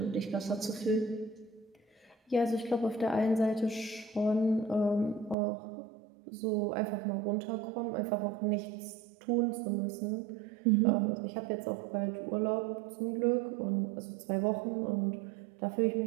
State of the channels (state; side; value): drops out; left; at 5.4 s